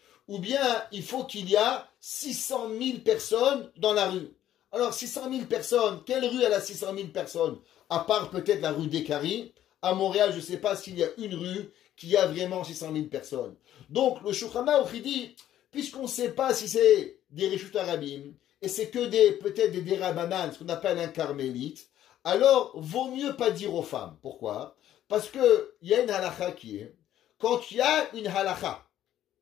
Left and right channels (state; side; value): quieter; right; 12.0 dB